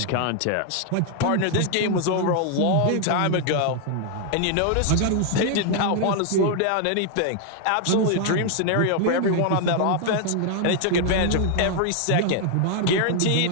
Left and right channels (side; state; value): both; different; correlation 0.00